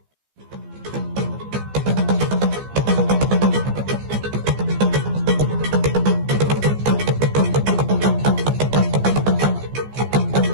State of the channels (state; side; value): late; left; 14 ms